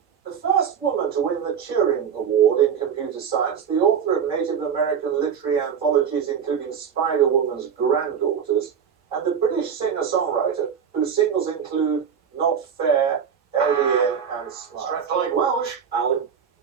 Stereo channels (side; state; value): left; quieter; 7.4 dB